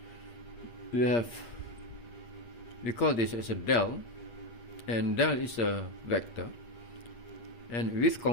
we call this as a del, and del is a vector, and with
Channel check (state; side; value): late; right; 8.6 ms